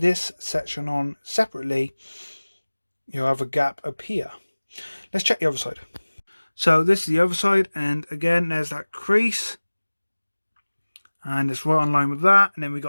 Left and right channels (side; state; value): both; inverted; correlation -1.00